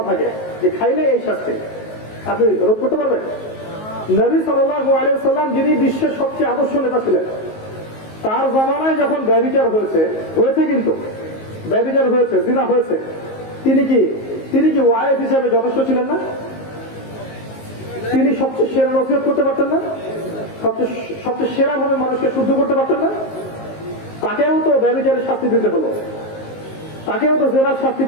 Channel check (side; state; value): right; late; 19 ms